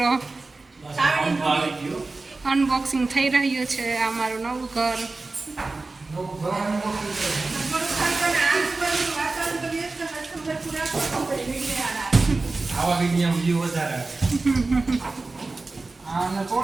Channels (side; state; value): left; quieter; 3.5 dB